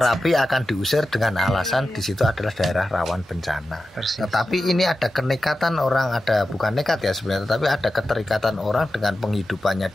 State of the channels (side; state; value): both; normal; correlation 0.92